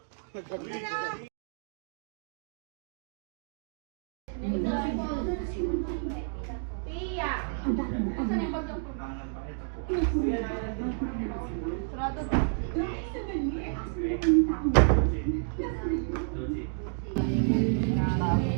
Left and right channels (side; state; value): left; silent; digital silence